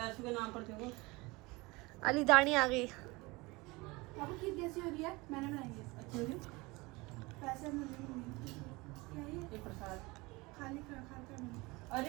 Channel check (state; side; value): quieter; left; 23.7 dB